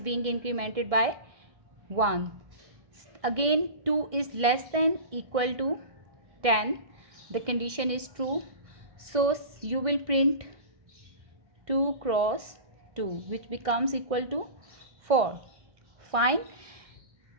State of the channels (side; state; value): left; late; 1.6 ms